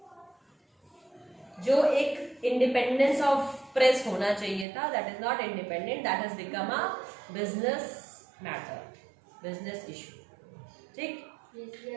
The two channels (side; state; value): left; drops out; at 4.7 s